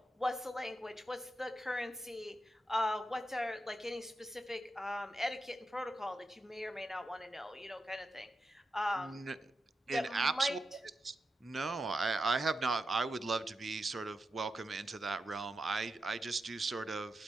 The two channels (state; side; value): normal; both; correlation 0.88